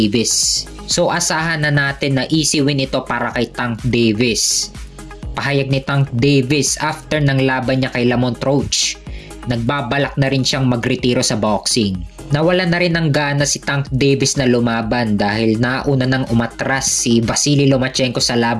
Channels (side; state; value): both; identical; correlation 1.00